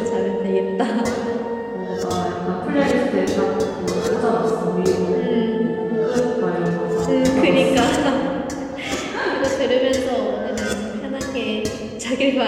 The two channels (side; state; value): both; identical; correlation 1.00